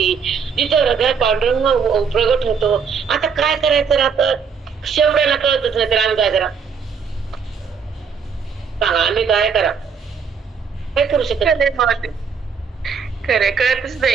जिथं हृदयात पांडुरंग प्रगट होतो. आता काय करायचं राहतं, शेवड्याला कळतच नाही तर आम्ही काय करा सांगा. आम्ही काय करा, काय करू शकत. खरं कळतच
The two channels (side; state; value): left; quieter; 6.1 dB